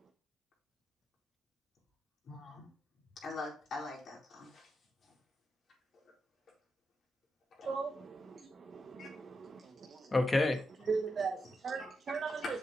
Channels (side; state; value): both; normal; correlation 0.86